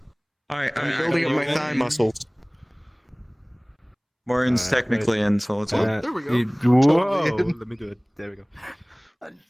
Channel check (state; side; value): identical; both; correlation 1.00